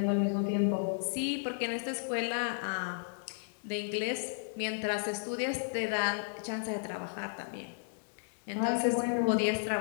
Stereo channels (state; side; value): silent; right; digital silence